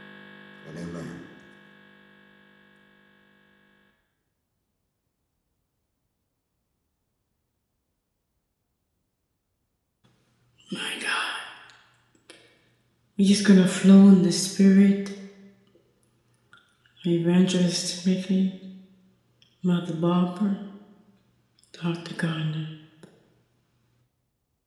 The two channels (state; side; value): identical; both; correlation 1.00